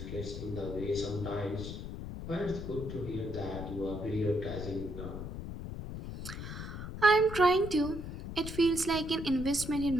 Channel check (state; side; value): noise; left; rumble, 8 dB below the sound